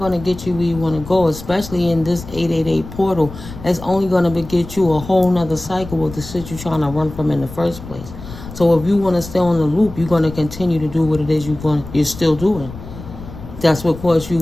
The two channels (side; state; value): left; noise; rumble, 13 dB below the sound